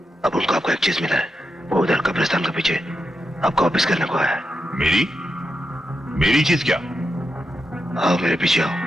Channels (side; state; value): both; normal; correlation 0.86